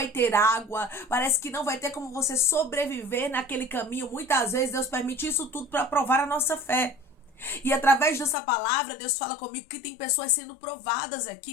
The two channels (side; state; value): right; drops out; at 8.3 s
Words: ter água, parece que não vai ter como você sobreviver naquele caminho. Muitas vezes Deus permite isso tudo para provar a nossa fé. E através dessa palavra, Deus fala comigo que tem pessoas sendo provadas